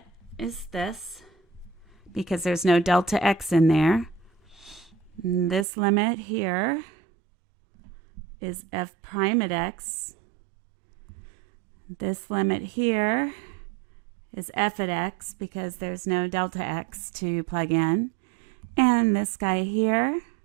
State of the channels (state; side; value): drops out; left; at 5.7 s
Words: is this, because there's no delta x in there. And this limit here is f prime at x. This limit here is f at x because there's no delta x to plug in. And this guy here